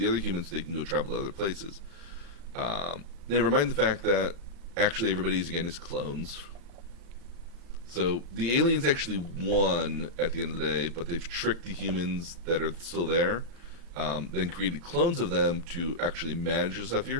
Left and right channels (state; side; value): late; left; 35 ms